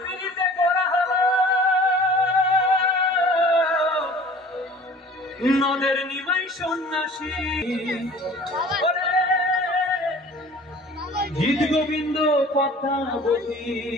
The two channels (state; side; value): normal; both; correlation 0.46